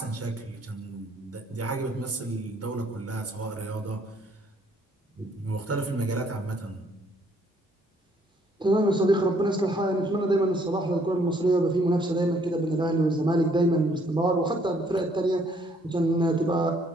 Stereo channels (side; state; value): both; normal; correlation 0.65